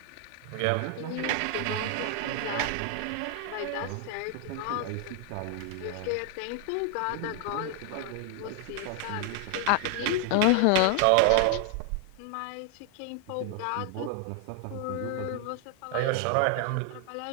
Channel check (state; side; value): different; both; correlation 0.00